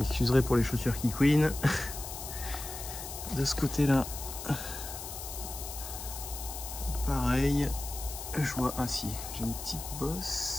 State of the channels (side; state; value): left; noise; hiss, 9 dB below the sound